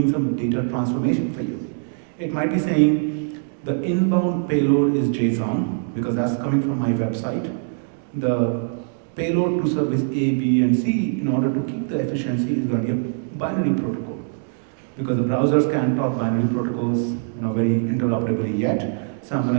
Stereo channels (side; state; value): left; silent; digital silence